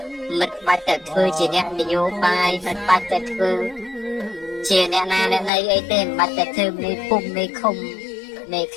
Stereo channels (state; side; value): drops out; right; at 5.5 s